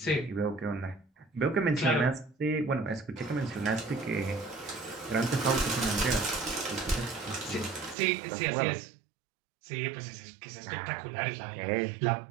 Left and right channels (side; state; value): left; drops out; at 8.0 s